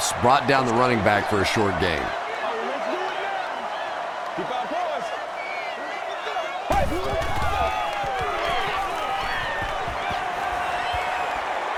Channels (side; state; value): both; identical; correlation 1.00